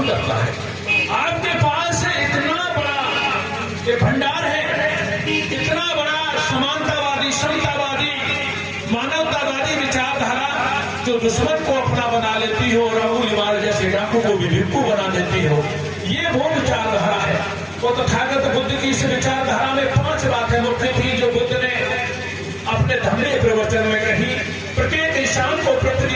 करता है। आपके पास इतना बड़ा ये भंडार है, इतना बड़ा समानतावादी, समतावादी, मानवतावादी विचारधारा जो दुश्मन को अपना बना लेती हो और अबूल इमार जैसे डाकू को भी भिक्षु बना देती हो, ये वो विचारधारा है। वो तथागत बुद्ध की इस विचारधारा में 5 बातें मुख्य थी जो बुद्ध ने अपने धम्म प्रवचन में कही। प्रत्येक इंसान को पृथ्वी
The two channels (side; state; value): both; identical; correlation 1.00